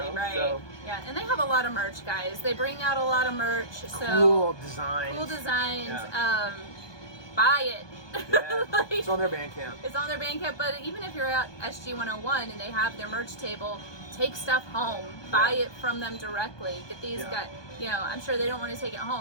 So, yeah, and they have a lot of merch, guys. They bring out a lot of merch. So cool designs. Yeah. Buy it. Yeah. It's on their Bandcamp. It's on their Bandcamp. But even if you're at SG 101 and they have their merch table, take stuff home. Buy it from them directly. Get these guys. I'm sure they don't want to take it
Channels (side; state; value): right; late; 1.2 ms